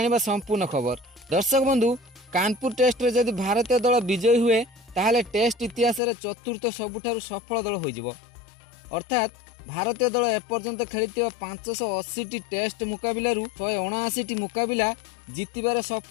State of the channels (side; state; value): right; drops out; at 6.0 s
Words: संपूर्ण खबर। दर्शक बंधु, कानपुर टेस्ट रे जदि भारतीय दल विजयी हुए ताहले टेस्ट इतिहास रे चतुर्थ सबुठारु सफल दल होइजिवो। अर्थात भारतीय दल एपर्यंत खेलिथिबा 580 टेस्ट मुकाबिलारू 179 मुकाबिला जीतिबार